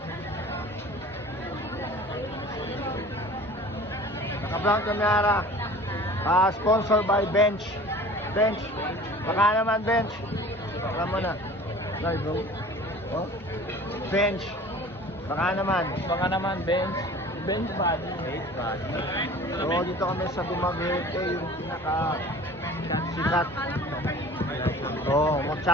Naka-vlog kamera. Sponsored by Bench. Baka naman Bench. Alam mo na. Sorry bro. Oh? Bench. Baka naman Bench. Bench body. So dito kami sa Dumaguete, yung pinaka sikat. Oh,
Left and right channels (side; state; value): both; normal; correlation 0.43